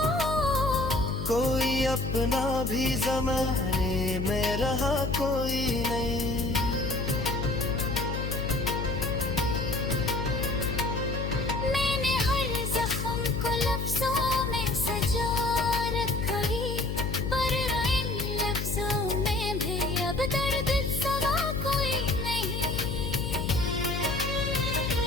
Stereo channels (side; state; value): left; noise; hum, 3 dB below the sound